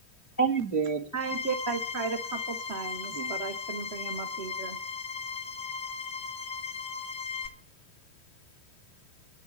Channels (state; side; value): late; right; 3.1 ms